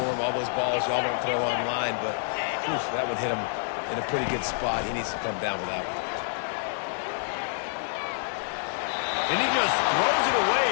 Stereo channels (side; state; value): right; silent; 60 dB below the other